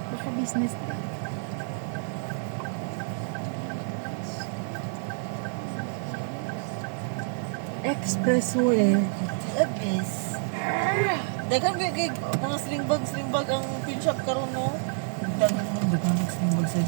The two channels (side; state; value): left; silent; 55 dB below the other